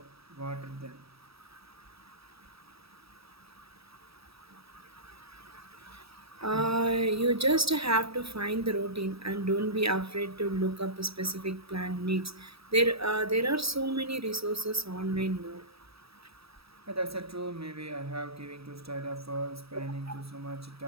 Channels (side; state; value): left; late; 0.77 ms